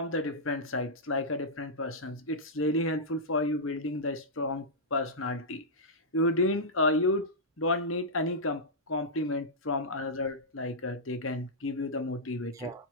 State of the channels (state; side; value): normal; both; correlation -0.11